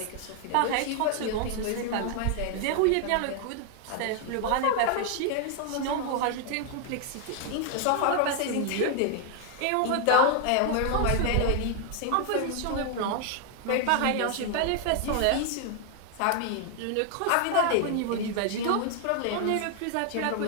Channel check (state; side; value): different; both; correlation 0.00